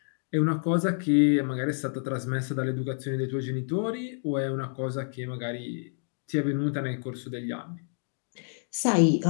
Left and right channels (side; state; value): right; silent; digital silence